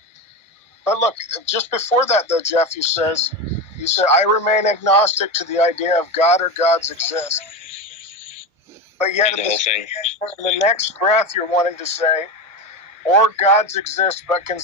But look, just before that, though, Jeff, you said, I remain agnostic to the idea of God or gods exist. But yet, in the next breath, you're wanting to say, or gods exist, but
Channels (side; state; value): both; normal; correlation 0.19